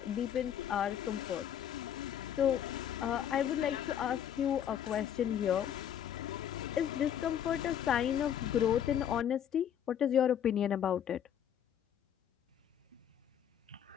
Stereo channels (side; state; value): right; quieter; 9.6 dB